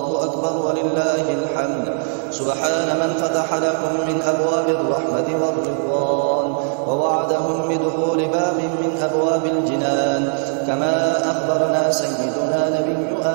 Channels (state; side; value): silent; left; digital silence